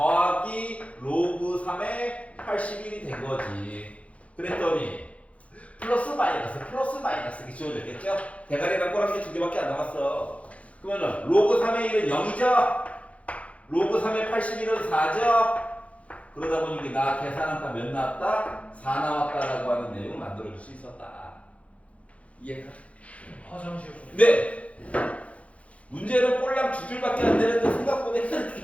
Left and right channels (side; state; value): right; late; 0.064 ms